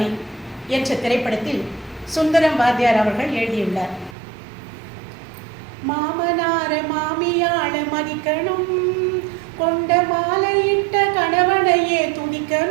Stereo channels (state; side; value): drops out; left; at 4.2 s